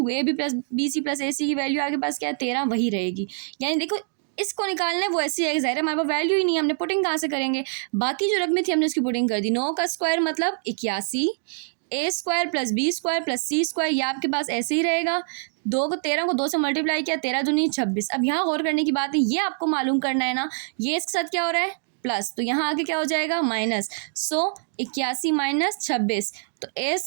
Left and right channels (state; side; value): silent; left; 62 dB below the other